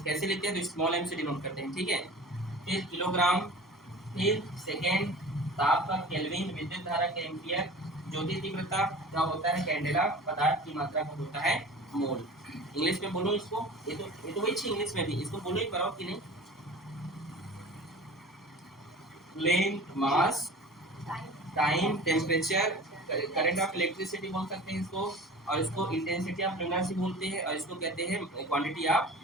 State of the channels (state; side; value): normal; both; correlation 0.39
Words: लिखते हैं, तो स्मॉल एम से डिनोट करते हैं, ठीक है। फिर किलोग्राम, फिर सेकेंड, ताप का केल्विन, विद्युत धारा के एम्पियर, ज्योति तीव्रता का होता है कैंडेला, पदार्थ की मात्रा का होता है मोल। इंग्लिश में बोलो इसको, ये तो वही थी इंग्लिश में भी, इसको बोलो ही पाओ कि नहीं, length, mass, time, temperature, current of electricity बोल सकते हैं इसको, और इसको इंटेंसिटी ऑफ लुमिनस बोलते हैं, और इसको कहते हैं क्वांटिटी ऑफ